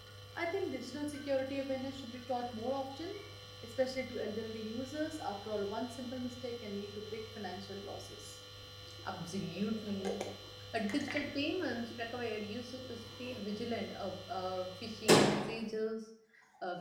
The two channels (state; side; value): identical; both; correlation 1.00